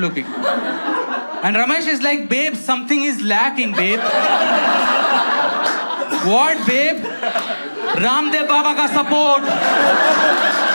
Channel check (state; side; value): inverted; both; correlation -1.00